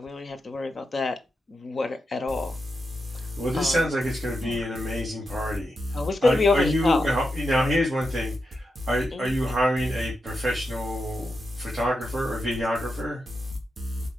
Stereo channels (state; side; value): normal; both; correlation 0.87